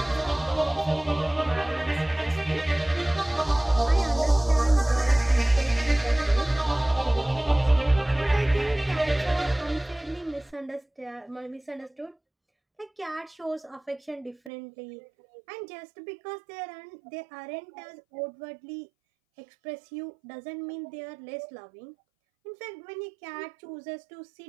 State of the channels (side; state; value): left; drops out; at 14.5 s